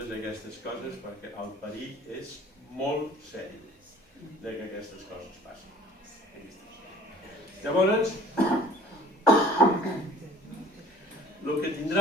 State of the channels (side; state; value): both; normal; correlation 0.50